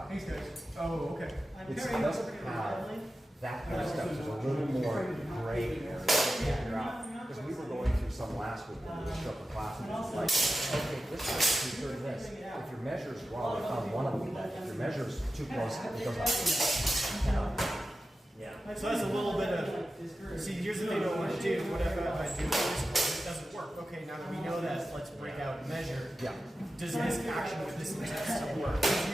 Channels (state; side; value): normal; both; correlation 0.93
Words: Thanks, guys. Oh, okay. It doesn't have that kind of stuff. There's a little more gray area to figure out. Because we were going through some last week when we showed the class, and it was like, okay, this is true for this. If your measure's wrong, we found one of them that if your measure's too close, it goes up. yeah. So that's a little bit of, see, here's the thing I want to do. What if I do this? It doesn't work. Okay, now that we know that, let's break out and measure. Yeah. Does this action with this text still work? It's